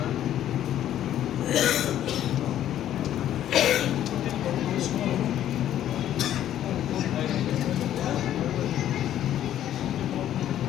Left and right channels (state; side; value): quieter; right; 11.6 dB